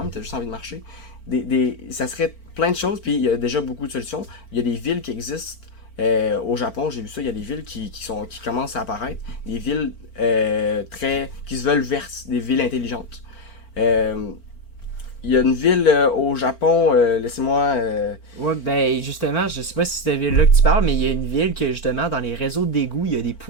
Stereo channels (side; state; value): right; late; 4.4 ms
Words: tu as juste envie de marcher. Ça serait plein de choses, puis il y a déjà beaucoup de solutions. Il y a des villes qui existent. Au Japon, j'ai vu ça, il y a des villes qui commencent à apparaître, des villes qui se veulent vertes, des villes intelligentes. Il y a une ville au Japon, laissez-moi... Ouais, ben justement, je sais pas si c'est cette ville-là que tu parles, mais il y a une ville que justement, dans les réseaux d'égouts, il y a des